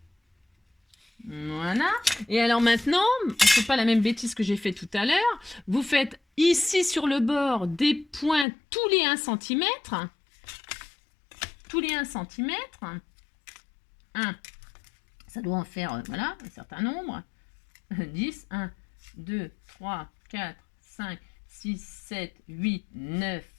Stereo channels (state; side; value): drops out; right; at 8.5 s